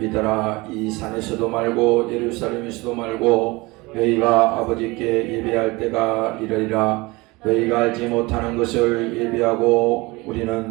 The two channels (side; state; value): left; quieter; 23.4 dB